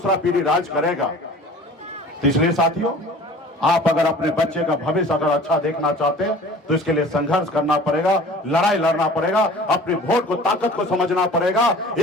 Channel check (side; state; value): both; normal; correlation 0.45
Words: पीढ़ी राज करेगा। तो इसलिए साथियों, आप अगर अपने बच्चे का भविष्य अगर अच्छा देखना चाहते हैं तो इसके लिए संघर्ष करना पड़ेगा, लड़ाई लड़ना पड़ेगा, अपने वोट को ताकत को समझना पड़ेगा,